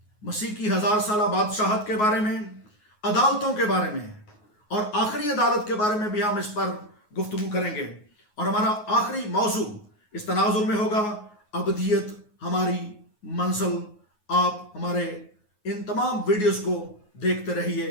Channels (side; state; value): right; late; 9.5 ms